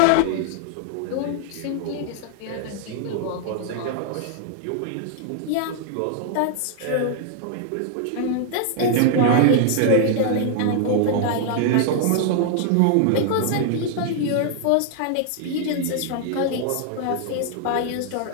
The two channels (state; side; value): different; both; correlation 0.00